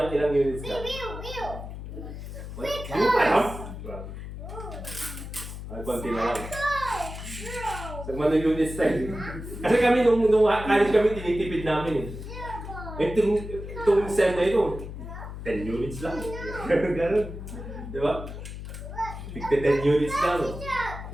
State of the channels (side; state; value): left; noise; hum, 9 dB below the sound